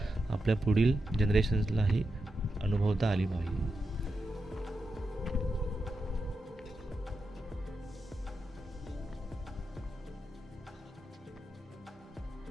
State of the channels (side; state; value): both; normal; correlation 0.87